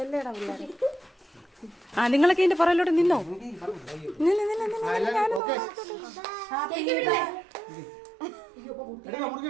ആ നിങ്ങളൊക്കെ ഇതിന്റെ പുറകിലോട്ട് നിന്നോ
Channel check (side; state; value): left; drops out; at 5.4 s